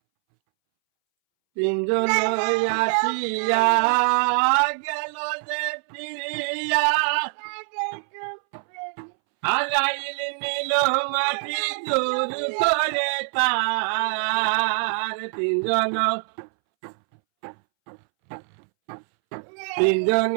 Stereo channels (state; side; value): silent; left; 63 dB below the other